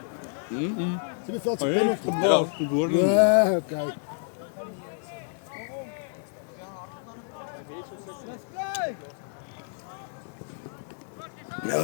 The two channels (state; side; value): silent; right; 59 dB below the other